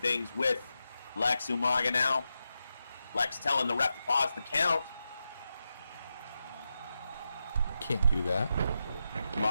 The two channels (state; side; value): inverted; both; correlation -0.88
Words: with Lex Umaga now. Lex telling the ref to pause the count. Can't do that.